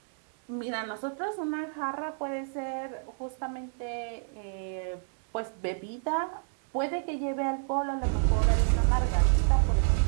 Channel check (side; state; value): left; silent; digital silence